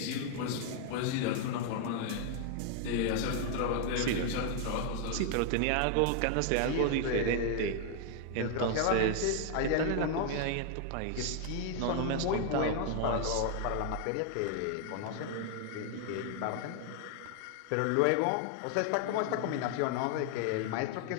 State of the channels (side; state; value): both; different; correlation 0.00